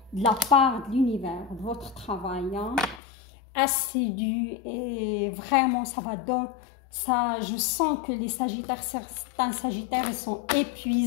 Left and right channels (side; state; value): right; drops out; at 3.0 s